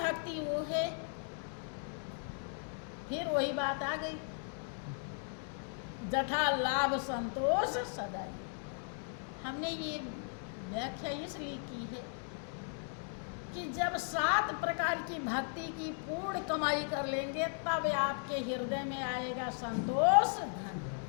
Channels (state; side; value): silent; right; 53 dB below the other